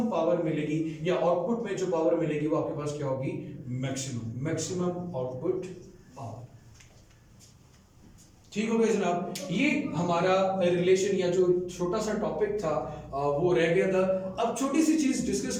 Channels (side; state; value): both; identical; correlation 1.00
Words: पावर मिलेगी या आउटपुट में जो पावर मिलेगी वो आपके पास क्या होगी, मैक्सिमम आउटपुट पावर। ठीक हो गया जनाब। ये हमारा रिलेशन या जो छोटा सा टॉपिक था वो रह गया था। अब छोटी सी चीज डिस्कस